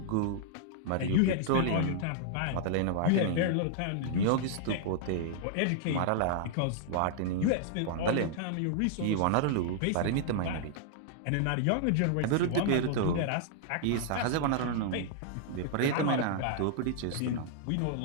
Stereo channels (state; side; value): different; both; correlation -0.01